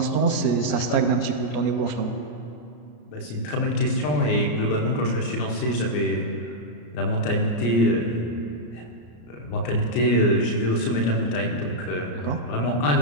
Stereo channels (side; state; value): right; late; 34 ms